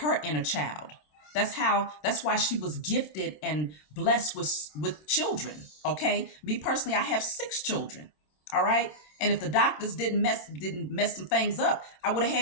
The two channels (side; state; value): right; late; 26 ms